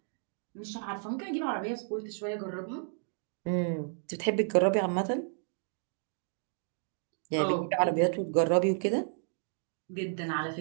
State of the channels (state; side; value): silent; left; 56 dB below the other